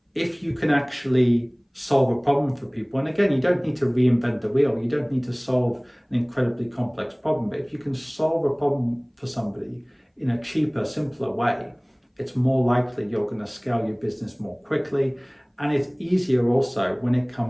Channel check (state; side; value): identical; both; correlation 1.00